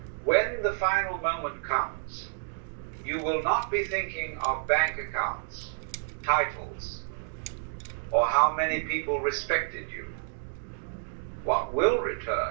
When the final moment comes, you will not be thinking of bank accounts, titles, or how many people respected you. What will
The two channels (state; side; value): silent; left; digital silence